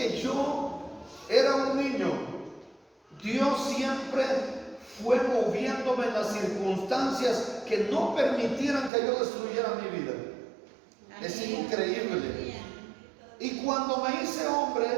yo era un niño, Dios siempre fue moviéndome en las circunstancias que no permitieran que yo destruyera mi vida. Es increíble. Y cuando me hice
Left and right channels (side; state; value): left; drops out; at 8.9 s